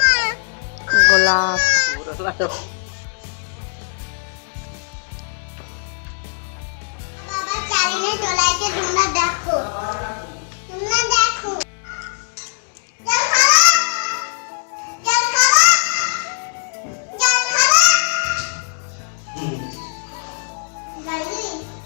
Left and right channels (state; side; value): silent; right; digital silence